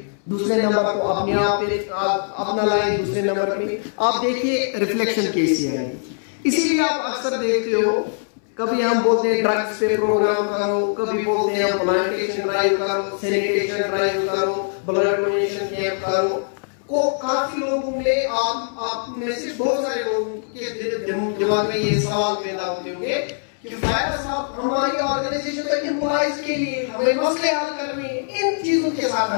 दूसरे नंबर को अपने आप पे अपना लाएं, दूसरे नंबर पे आप देखिए रिफ्लेक्शन कैसी है। इसीलिए आप अक्सर देखते हो, कभी हम बोलते हैं ड्रग्स पे प्रोग्राम करो, कभी बोलते हैं प्लांटेशन ड्राइव करो, सैनिटेशन ड्राइव करो, ब्लड डोनेशन कैंप करो। को काफी लोगों में आप में से बहुत सारे लोगों के दिमाग में ये सवाल पैदा होते होंगे कि फायदा साहब हमारी ऑर्गेनाइजेशन तो एम्प्लॉइज के लिए, हमें मसले हल करने हैं, इन चीजों के साथ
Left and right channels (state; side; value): silent; right; 64 dB below the other